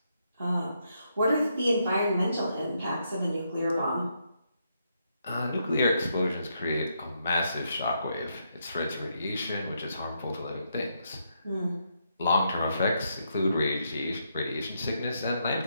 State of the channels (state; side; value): inverted; both; correlation -0.78